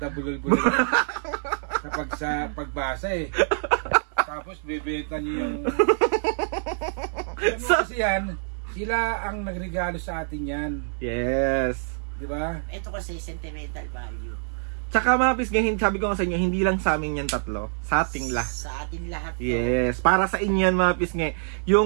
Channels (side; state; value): left; silent; digital silence